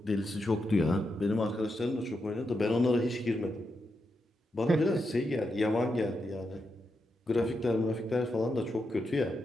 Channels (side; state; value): both; normal; correlation 0.85